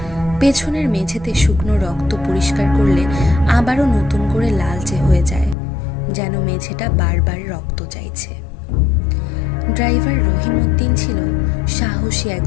পেছনের মেঝেতে শুকনো রক্ত পরিষ্কার করলে আবারও নতুন করে লালচে হয়ে যায়, যেন মেঝেটা বারবার রক্ত চাইছে। ড্রাইভার রহিমউদ্দিন ছিল সাহসী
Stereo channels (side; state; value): right; drops out; at 5.6 s